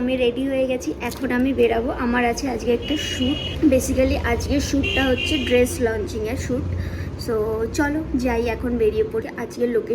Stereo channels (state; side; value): identical; both; correlation 1.00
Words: রেডি হয়ে গেছি। এখন আমি বেরাবো, আমার আছে আজকে একটা শ্যুট। বেসিক্যালি আজকের শ্যুটটা হচ্ছে ড্রেস লঞ্চিংয়ের শ্যুট। সো চলো যাই, এখন বেরিয়ে পড়ি। আজকের